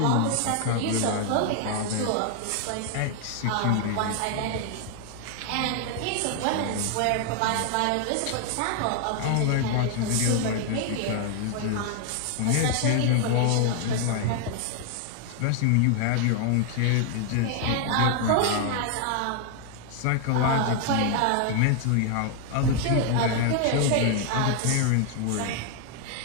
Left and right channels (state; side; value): different; both; correlation 0.00